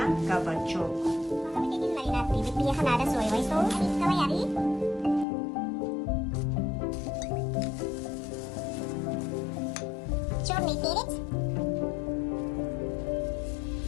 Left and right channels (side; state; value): right; drops out; at 5.2 s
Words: кабачок. Черный перец.